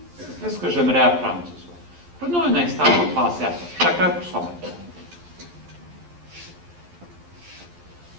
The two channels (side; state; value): left; late; 11 ms